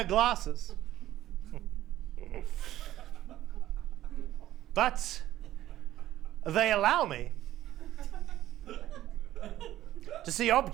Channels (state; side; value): quieter; left; 13.7 dB